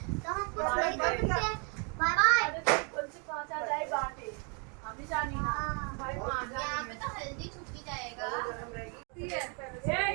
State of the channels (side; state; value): left; quieter; 36.4 dB